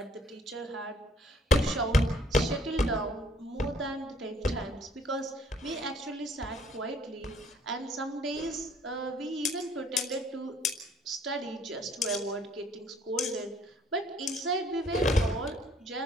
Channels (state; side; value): normal; both; correlation 0.60